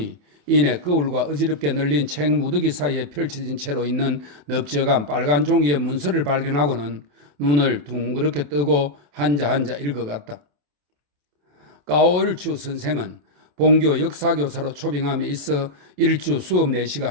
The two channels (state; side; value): late; left; 27 ms